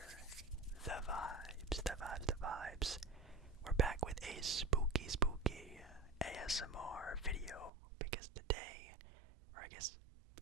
the vibes. We're back with a spooky ASMR video because today, or I guess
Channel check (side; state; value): left; drops out; at 7.7 s